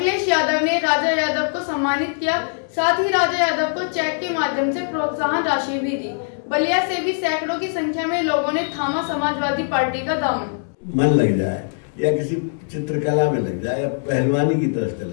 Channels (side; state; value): right; silent; digital silence